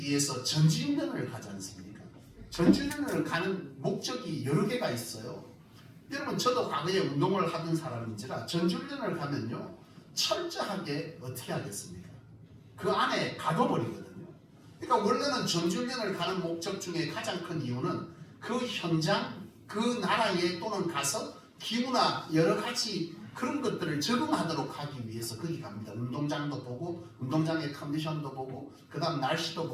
전지훈련을 가지 않습니까? 전지훈련을 가는 목적이 여러 개가 있어요. 여러분, 저도 과거에 운동을 하던 사람인지라 전지훈련을 가면요, 철저하게 어떻게 하겠습니까? 그 안에 가둬버리거든요. 그러니까 원래는 전지훈련을 가는 목적 중에 가장 큰 이유는 그 현장, 그 나라에 또는 가서 기후나 여러 가지 그런 것들을 적응하도록 하기 위해서 거기 갑니다. 운동장도 보고, 운동장의 컨디션도 보고, 그 다음 날씨도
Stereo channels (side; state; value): both; identical; correlation 1.00